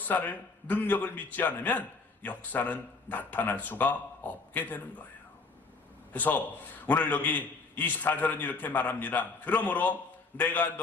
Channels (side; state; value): right; quieter; 4.1 dB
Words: 능력을 믿지 않으면 역사는 나타날 수가 없게 되는 거예요. 그래서 오늘 여기 24절은 이렇게 말합니다. 그러므로 내가